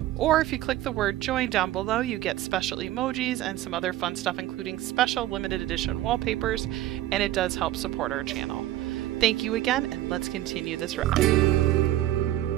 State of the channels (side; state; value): left; quieter; 14.4 dB